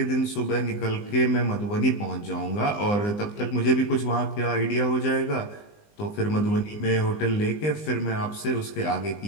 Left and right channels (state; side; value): late; right; 19 ms